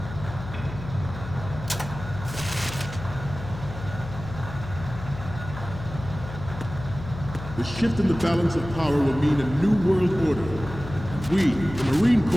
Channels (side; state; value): left; noise; hum, 11 dB below the sound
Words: The shift in the balance of power will mean a new world order. We, the Marine